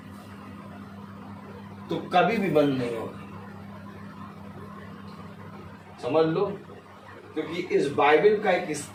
तो कभी भी बंद नहीं होगी। समझ लो, क्योंकि इस बाइबल का एक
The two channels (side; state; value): both; identical; correlation 1.00